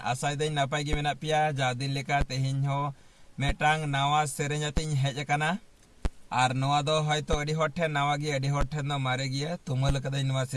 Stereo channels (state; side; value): identical; both; correlation 1.00